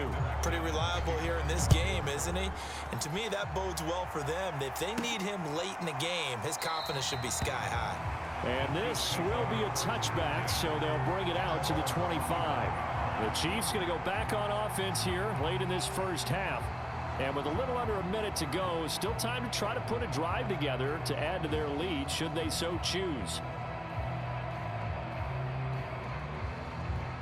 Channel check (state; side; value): identical; both; correlation 1.00